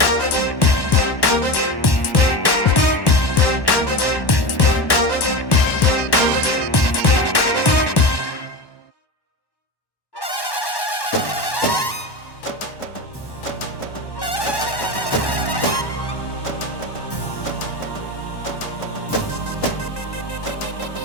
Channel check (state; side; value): late; right; 1.1 ms